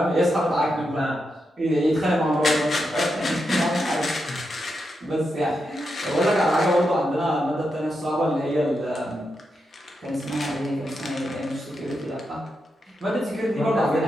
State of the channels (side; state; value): both; normal; correlation 0.85